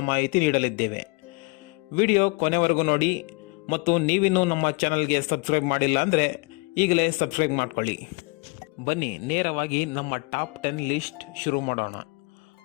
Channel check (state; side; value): quieter; right; 29.6 dB